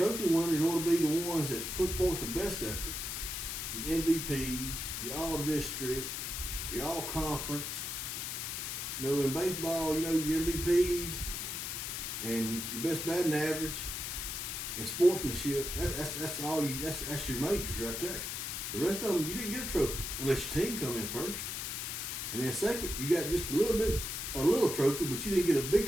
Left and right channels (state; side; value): noise; left; hiss, 4 dB below the sound